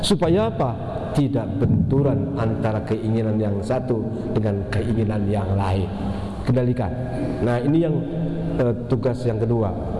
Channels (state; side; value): identical; both; correlation 1.00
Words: apa? Tidak benturan antara keinginan yang satu dengan keinginan yang lain. Kendalikan. Nah ini yang tugas yang kedua